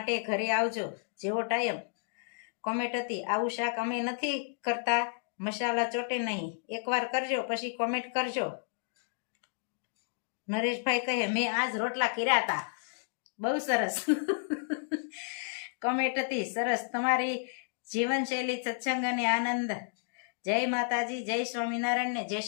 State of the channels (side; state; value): right; silent; digital silence